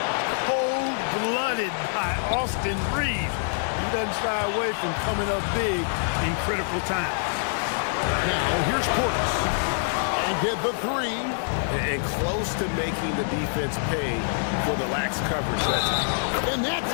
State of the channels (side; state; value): right; silent; digital silence